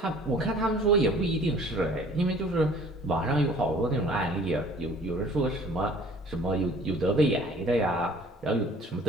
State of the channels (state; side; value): normal; both; correlation 0.51